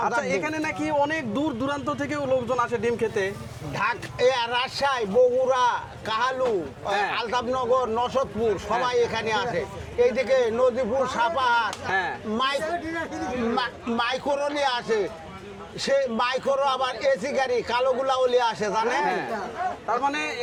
আচ্ছা, এখানে নাকি অনেক দূর দূরান্ত থেকেও লোকজন আসে ডিম খেতে। রাজশাহী, বগুড়া, কাহালু, আলতাফনগর, নসদপুর সবাই এখানে আসে। এইদিকে নদীপুর, সাপাহার, মাইক্রোলি আসে। সে মাইক্রো আবার এসি গাড়ি কালোগুলা ওলি আসে, জানেন? তার মানে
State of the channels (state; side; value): identical; both; correlation 1.00